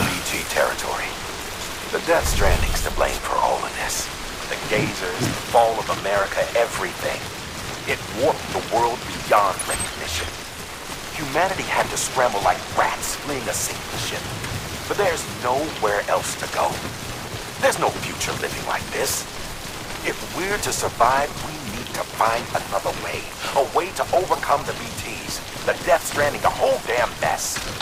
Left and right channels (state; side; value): identical; both; correlation 1.00